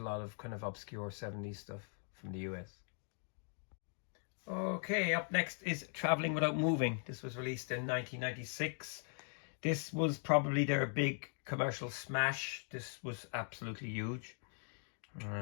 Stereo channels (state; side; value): silent; right; 51 dB below the other